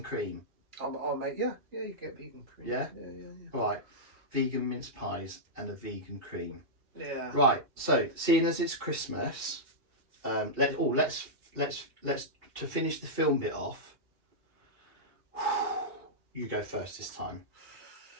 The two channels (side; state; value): left; late; 2.8 ms